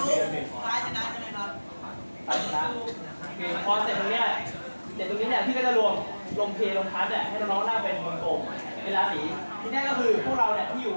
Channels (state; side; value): inverted; both; correlation -1.00